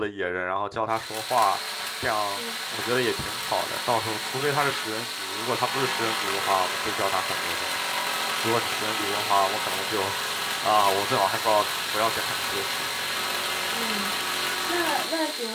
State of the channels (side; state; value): both; identical; correlation 1.00